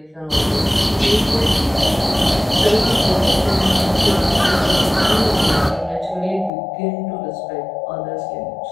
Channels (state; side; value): drops out; right; at 6.5 s